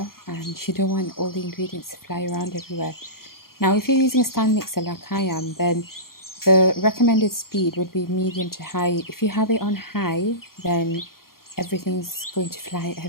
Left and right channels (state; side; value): late; right; 0.92 ms